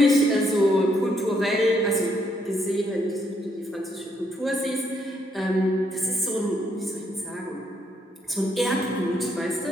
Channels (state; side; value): normal; both; correlation 0.73